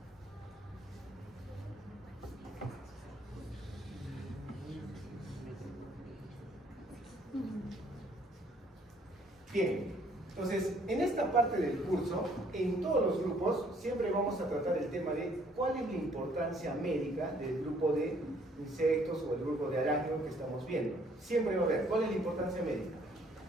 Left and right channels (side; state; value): both; normal; correlation 0.63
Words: Bien, entonces en esta parte del curso, en todos los grupos, siempre vamos a tratar el tema de cuál es la importancia médica del grupo de insectos o el grupo de arácnidos que estamos viendo. Siempre va a ver cuál es la importancia médica.